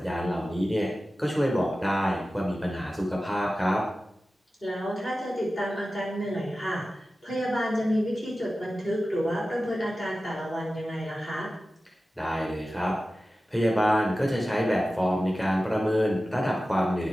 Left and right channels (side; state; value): both; normal; correlation 0.95